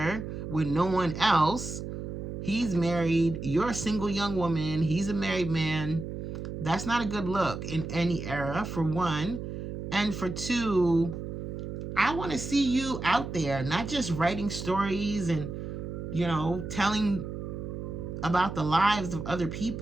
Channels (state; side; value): noise; right; hum, 6 dB below the sound